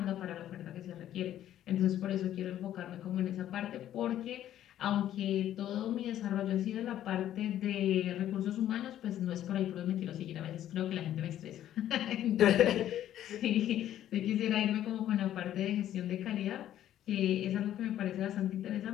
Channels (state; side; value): quieter; right; 11.8 dB